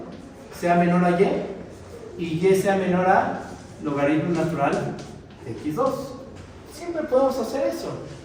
sea menor a y y sea menor a logaritmo natural de x2. Siempre podemos hacer eso.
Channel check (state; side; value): identical; both; correlation 1.00